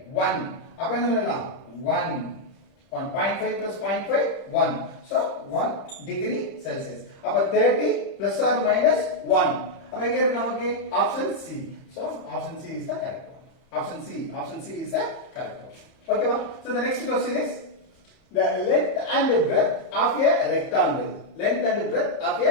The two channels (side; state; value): right; late; 31 ms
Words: 1. அப்ப என்ன சொல்லலாம், 1. 1.5 plus 0.5, 1. so 1 degree Celsius. அப்ப 30 plus or minus 1. அப்ப எங்க இருக்கு நமக்கு, option C. so option C is the correct one. Option C is the correct one. Okay va? So the next question is the length and breadth of a rectangle. Length and breadth of a